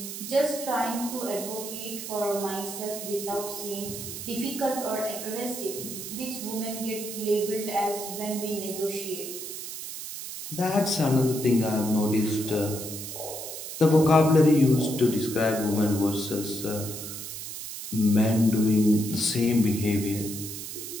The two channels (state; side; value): noise; right; hiss, 8 dB below the sound